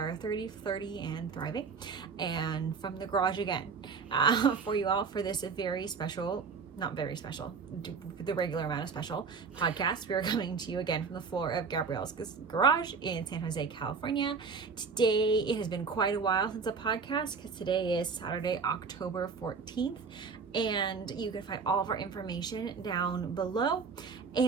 30, 30, and thriving. And from the garage again for you all for this very special, not very special, the regular amount of special podcast. We are coming to you again from the floor of Gabrielle's garage in San Jose, California. Today, it has been quite a while since a podcast because today is Saturday, October 14th. And you can find all of our information down below.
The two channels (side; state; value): left; quieter; 5.2 dB